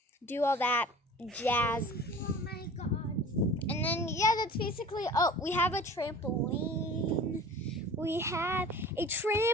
do all that jazz. Oh my god! And then yeah, that's basically. Oh, we have a trampoline. We have a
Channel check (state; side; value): normal; both; correlation 0.42